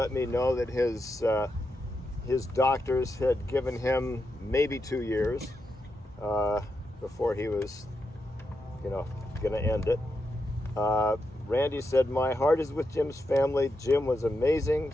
me know that his doctors had given him maybe 2 years before he was, going to end it. Randy said, "My heart is with Jim's family. Jim was amazing,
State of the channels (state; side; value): normal; both; correlation 0.85